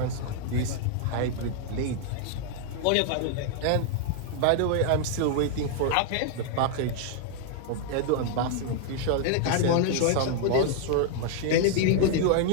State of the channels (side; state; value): both; different; correlation 0.00